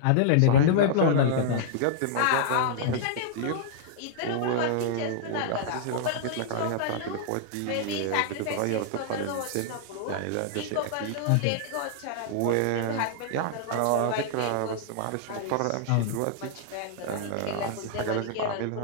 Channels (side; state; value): both; different; correlation -0.01